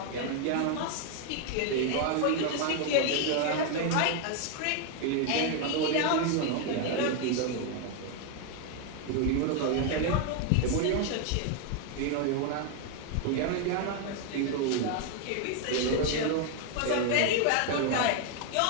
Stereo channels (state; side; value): different; both; correlation 0.01